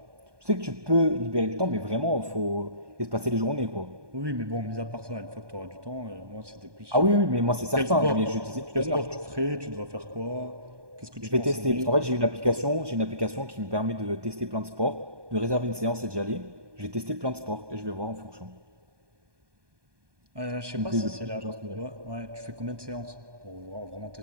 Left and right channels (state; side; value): late; left; 1.2 ms